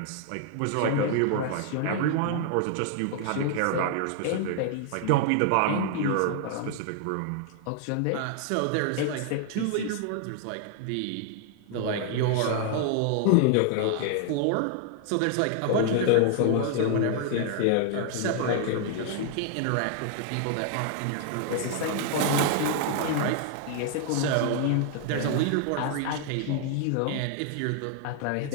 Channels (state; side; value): different; both; correlation 0.00